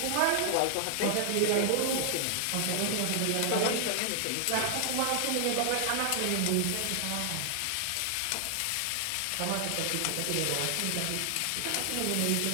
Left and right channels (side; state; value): both; different; correlation 0.00